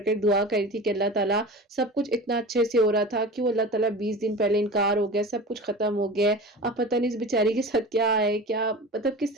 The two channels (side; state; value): both; normal; correlation 0.33